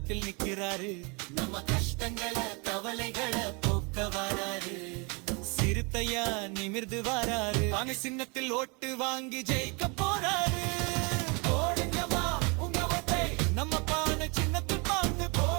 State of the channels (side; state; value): left; quieter; 30.9 dB